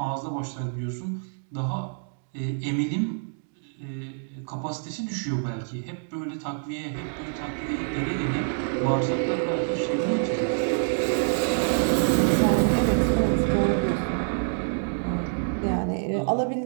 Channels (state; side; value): silent; left; digital silence